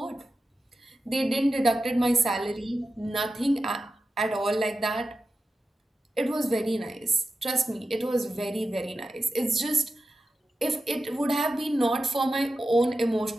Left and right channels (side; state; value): both; normal; correlation 0.91